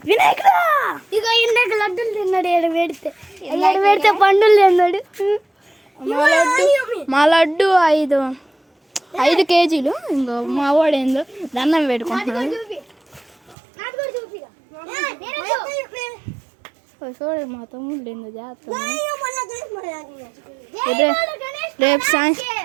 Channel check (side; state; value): left; drops out; at 13.6 s